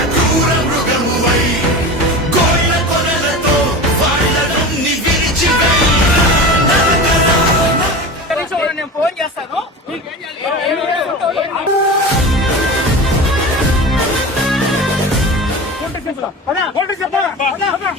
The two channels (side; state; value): both; normal; correlation 0.30